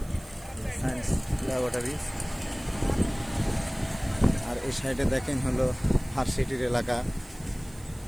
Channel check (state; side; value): noise; right; hiss, 22 dB below the sound